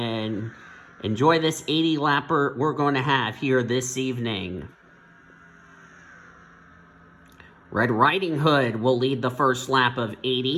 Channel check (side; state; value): both; identical; correlation 1.00